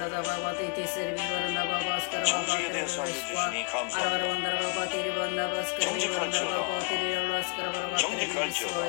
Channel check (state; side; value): quieter; right; 34.4 dB